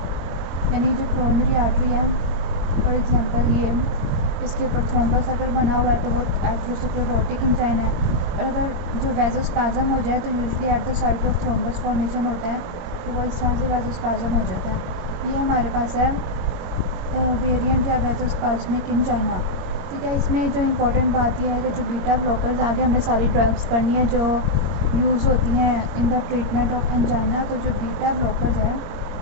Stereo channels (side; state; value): left; late; 22 ms